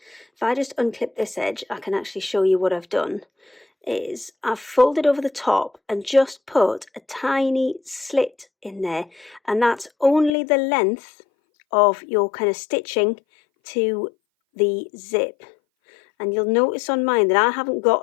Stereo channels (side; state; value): right; drops out; at 10.3 s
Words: if I just unclip this edge, I can actually show you what I've done. Is I've folded over the top and just put a tiny slit in there, and that's only the length of your kind of stitching to the zip. And you'll notice on mine that I haven't